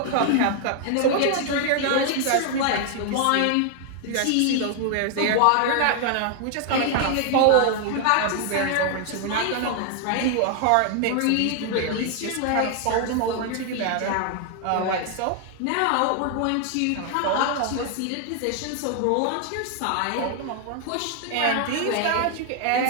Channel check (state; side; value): different; both; correlation 0.00